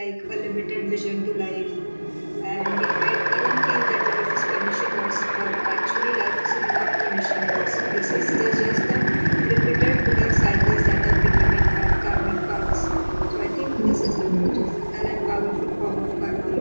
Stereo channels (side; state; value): both; inverted; correlation -1.00